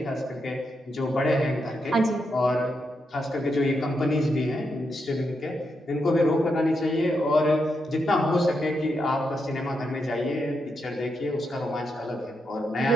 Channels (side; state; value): both; normal; correlation 0.83